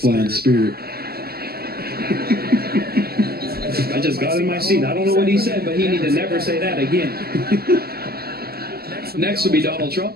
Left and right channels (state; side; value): late; left; 0.45 ms